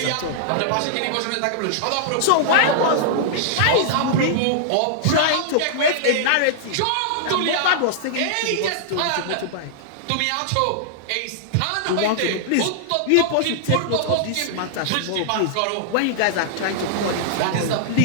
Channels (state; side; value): different; both; correlation -0.01